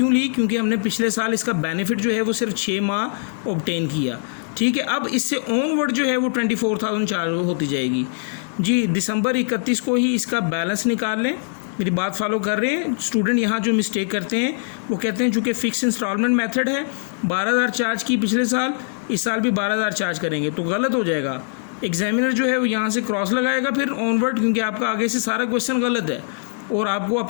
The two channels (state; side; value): silent; right; digital silence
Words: ली? क्योंकि हमने पिछले साल इसका बेनिफिट जो है वो सिर्फ 6 माह ऑब्टेन किया, ठीक है। अब इससे ऑनवर्ड जो है वो 24,000 चार्ज होती जाएगी जी। दिसंबर 31 को ही इसका बैलेंस निकाल लें। मेरी बात फॉलो कर रहे हैं? स्टूडेंट यहाँ जो मिस्टेक करते हैं वो कहते हैं चूँकि फ़िक्स इंस्टॉलमेंट मेथड है, 12,000 चार्ज की पिछले साल, इस साल भी 12,000 चार्ज करेंगे, तो गलत हो जाएगा। एग्जामिनर जो है वो यहाँ से क्रॉस लगाएगा फिर ऑनवर्ड, क्योंकि आपका आगे से सारा क्वेश्चन गलत है और आपको